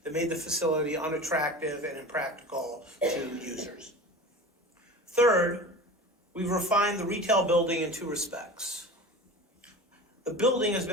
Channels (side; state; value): both; normal; correlation 0.34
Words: made the facility unattractive and impractical to users. Third, we've refined the retail building in 2 respects. The building has